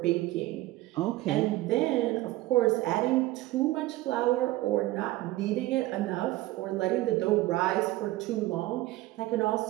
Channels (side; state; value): left; quieter; 17.7 dB